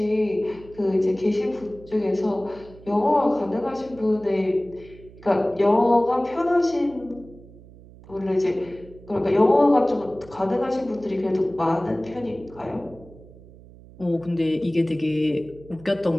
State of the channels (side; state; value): right; noise; hum, 21 dB below the sound